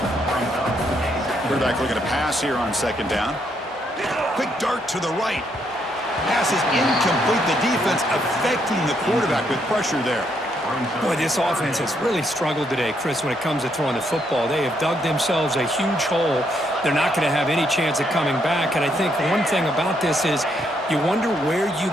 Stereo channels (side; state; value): both; normal; correlation 0.75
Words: Quarterback looking to pass here on 2nd down. Quick dart to the right. Pass is incomplete. The defense affecting the quarterback with pressure there. Boy, this offense has really struggled today, Chris, when it comes to throwing the football. They have dug themselves a huge hole. They're not going to have any chance of coming back. And I think one thing about this is you wonder where you